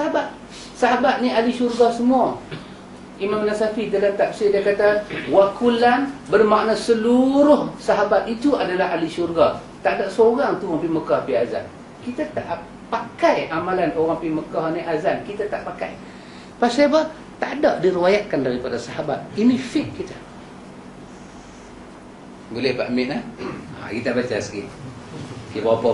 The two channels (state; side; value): identical; both; correlation 1.00